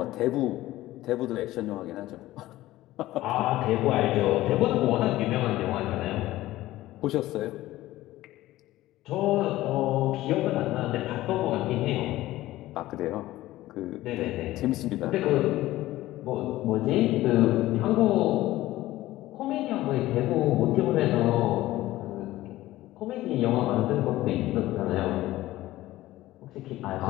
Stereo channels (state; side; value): quieter; right; 16.2 dB